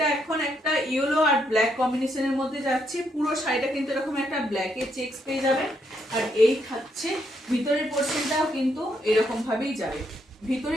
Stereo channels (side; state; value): both; normal; correlation 0.76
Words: এখন একটা ইয়েলো আর ব্ল্যাক কম্বিনেশনের মধ্যে যাচ্ছে, পুরো শাড়িটা কিন্তু এরকম একটা ব্ল্যাকের চেকস পেয়ে যাবেন। আর এই থাকছে ভিতরের পোর্শনটাও কিন্তু এরকম ভাবেই যাবে,